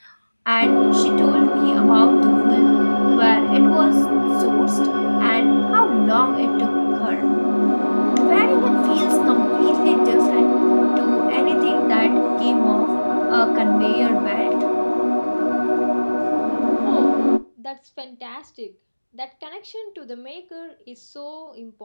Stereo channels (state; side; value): inverted; both; correlation -1.00